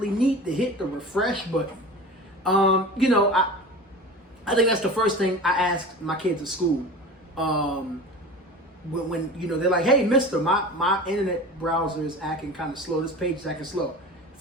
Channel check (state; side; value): normal; both; correlation 0.35